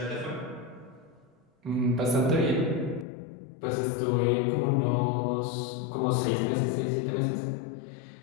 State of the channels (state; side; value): drops out; right; at 3.1 s